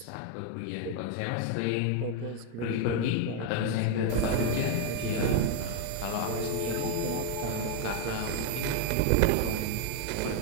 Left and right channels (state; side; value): different; both; correlation 0.01